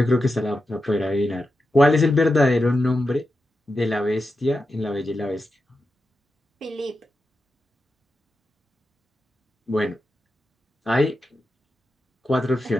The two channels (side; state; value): both; normal; correlation 0.89